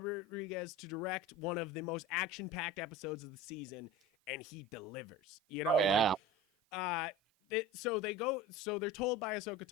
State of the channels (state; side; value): normal; both; correlation 0.35